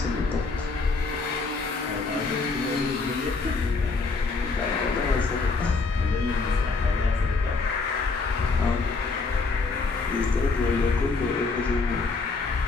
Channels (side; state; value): right; quieter; 4.1 dB